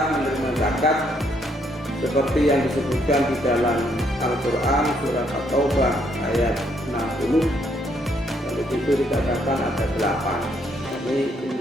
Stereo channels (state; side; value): normal; both; correlation 0.71